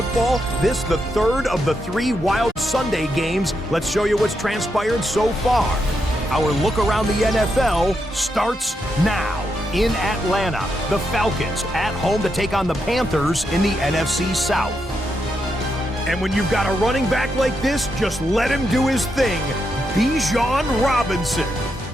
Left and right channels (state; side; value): normal; both; correlation 0.83